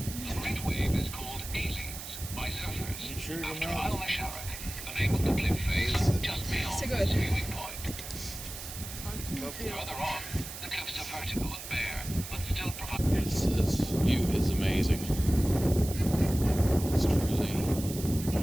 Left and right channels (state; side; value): noise; right; hiss, 10 dB below the sound